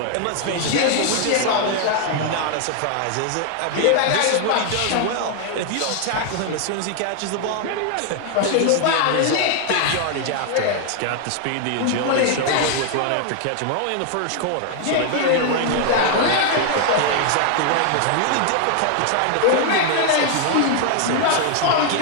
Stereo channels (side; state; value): both; different; correlation 0.00